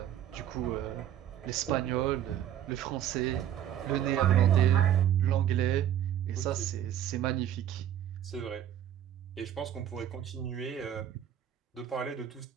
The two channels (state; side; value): quieter; left; 10.7 dB